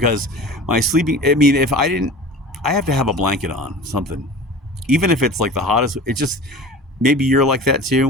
my sleeping, I mean, if I didn't, I have to have a blanket on, something. Even if it's like the hottest, it just, maybe you're like that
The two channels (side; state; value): both; normal; correlation 0.37